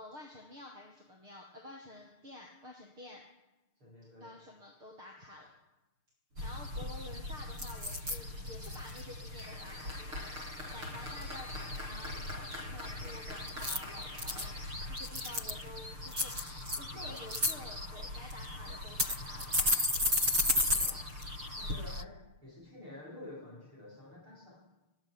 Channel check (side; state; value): left; late; 6.6 ms